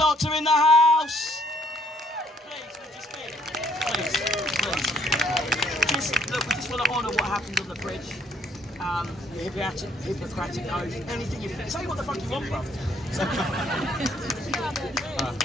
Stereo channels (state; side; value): normal; both; correlation 0.66